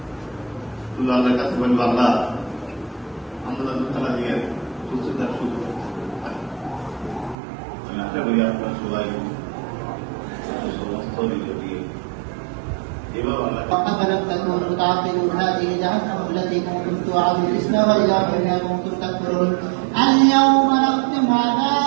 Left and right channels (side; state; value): left; drops out; at 7.4 s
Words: শুধু আল্লাহর কাছে বলবো আল্লাহ আন্দোলন খেলা দিয়ে সুস্থতার সুযোগ। আমি আশা করি আপনার সবাই সমস্ত নিজে দিয়ে এভাবে আল্লাহ فلم تكونوا تعقلون هذه جهنم التي كنتم توعدون اصلوها بما كنتم تكفرون اليوم نختم على